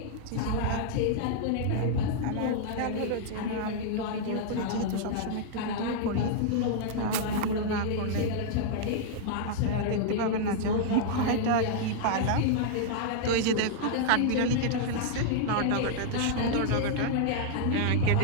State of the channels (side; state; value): both; different; correlation -0.01